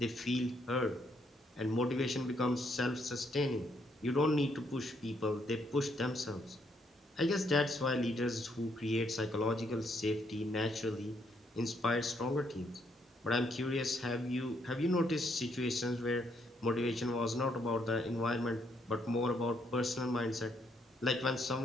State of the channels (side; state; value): both; normal; correlation 0.73